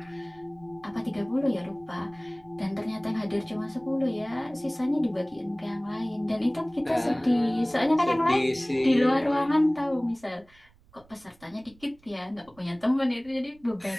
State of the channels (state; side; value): noise; right; rumble, 28 dB below the sound